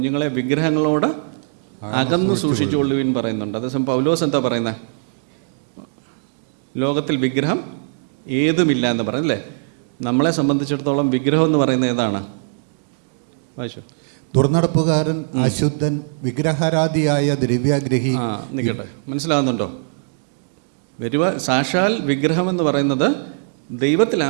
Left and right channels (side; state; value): left; silent; 65 dB below the other